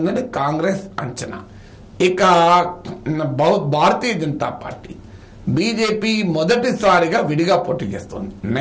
కాంగ్రెస్ అంచనా. ఇక భారతీయ జనతా పార్టీ, బీజేపీ మొదటిసారిగా విడిగా పోటీ చేస్తుంది.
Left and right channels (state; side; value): identical; both; correlation 1.00